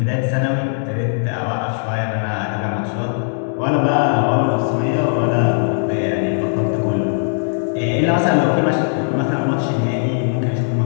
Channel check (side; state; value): right; silent; digital silence